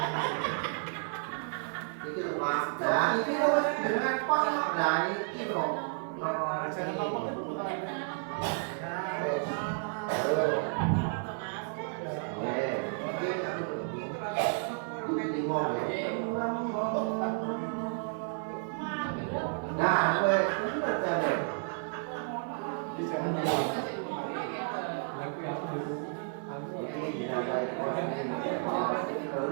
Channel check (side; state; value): left; silent; 56 dB below the other